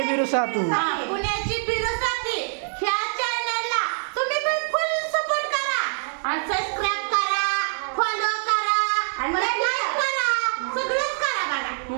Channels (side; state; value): left; silent; digital silence